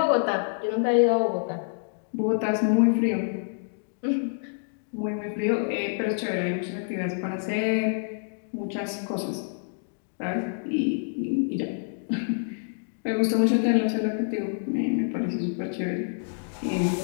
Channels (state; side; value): silent; right; digital silence